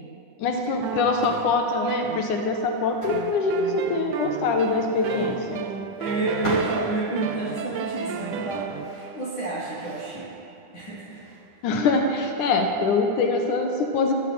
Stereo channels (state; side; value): late; right; 9.9 ms